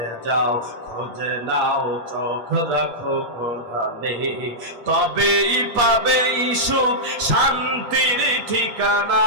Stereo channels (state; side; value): late; left; 8.3 ms